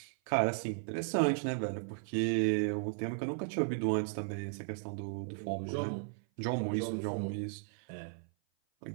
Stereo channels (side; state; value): left; silent; 54 dB below the other